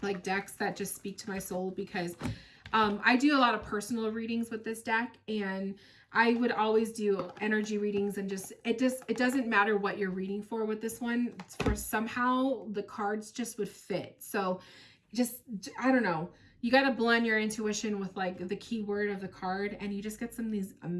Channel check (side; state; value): both; identical; correlation 1.00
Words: like decks that just speak to my soul because I do a lot of personal readings with this deck, and I would always do energy readings, and it doesn't matter what you're reading for with this one. For somehow the cards just would fit. So I don't know. You got to blend your intuition with like the keyword of the card, and you just get some of these